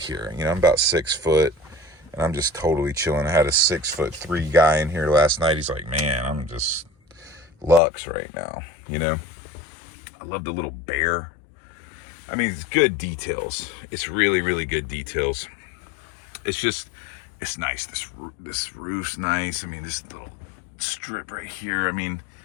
You know, I'm about 6 foot. And I'm just totally chilling. I had a 6'3" guy in here last night. He's like, man, I'm just luxe right now. You know, I love the little bear. I mean, it's good details. It's really, really good details. It's just, it's nice. This roof's nice. I mean, this little strip right here. I mean,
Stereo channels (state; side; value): drops out; right; at 7.8 s